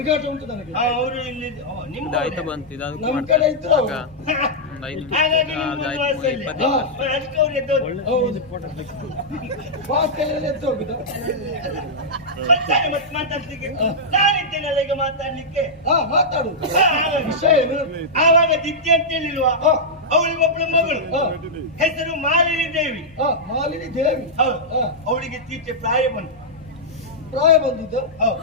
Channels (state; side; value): normal; both; correlation -0.09